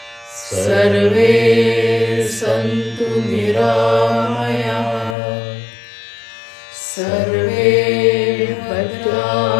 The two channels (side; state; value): right; drops out; at 5.2 s